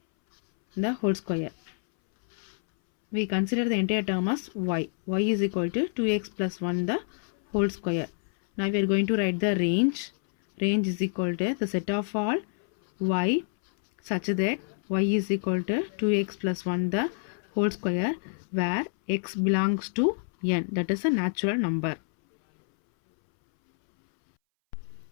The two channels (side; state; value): right; silent; 60 dB below the other